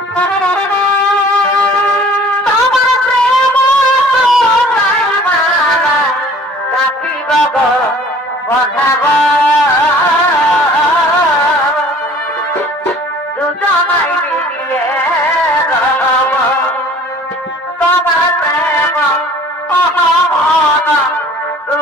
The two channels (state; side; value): normal; both; correlation 0.50